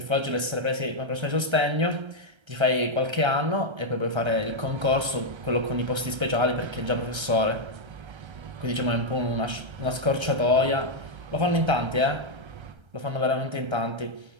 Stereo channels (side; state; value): left; late; 1.3 ms